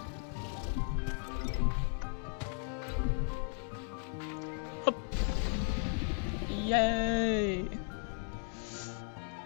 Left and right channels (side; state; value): right; quieter; 40.0 dB